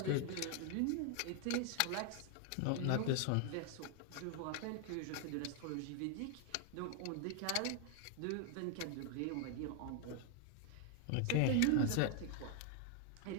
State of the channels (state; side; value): different; both; correlation 0.00